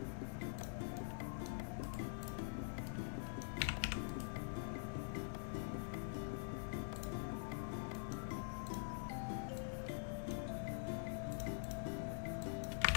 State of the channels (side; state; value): right; silent; digital silence